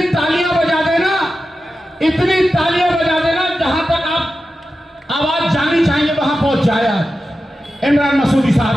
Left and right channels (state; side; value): normal; both; correlation 0.92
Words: तालियां बजा देना, इतनी तालियां बजा देना, जहां तक आप आवाज जानी चाहिए वहां पहुंच जाए। आज इमरान मसूदी